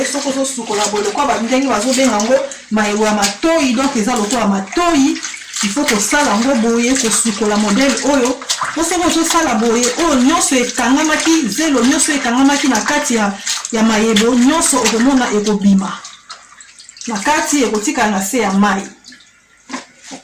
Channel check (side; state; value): both; identical; correlation 1.00